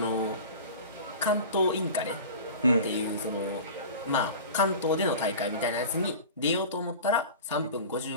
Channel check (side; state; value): both; inverted; correlation -0.36